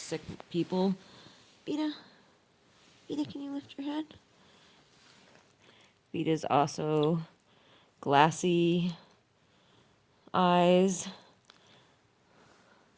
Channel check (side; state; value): both; identical; correlation 1.00